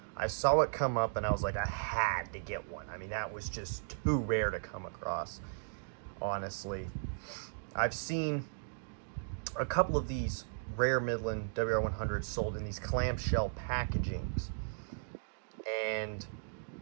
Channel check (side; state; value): left; silent; digital silence